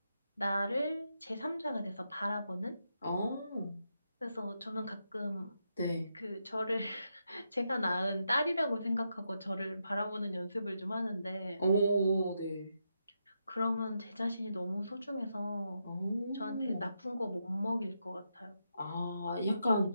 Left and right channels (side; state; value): both; inverted; correlation -0.83